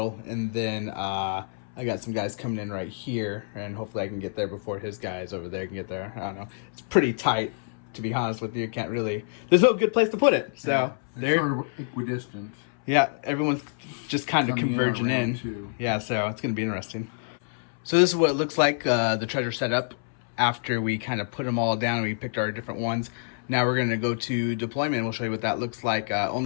and then I got some guys coming in right here, and hopefully I can get there before his guys over there can get there. I don't know. It's pretty tight, to be honest with you. Can't really, there's no good place to put it. So yeah, they're sort of equidistant. Yeah, everyone's just kind of converging in. Yeah, so it's going to be interesting. So this is what it looks like, the treasure setup after we kind of put them all down and we picked our different ones. Now we're going to go to deployment and we'll show you what that looks like.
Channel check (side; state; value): right; silent; 60 dB below the other